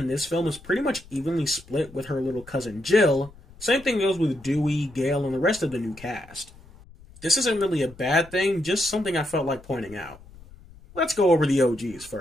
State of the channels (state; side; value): noise; left; rumble, 22 dB below the sound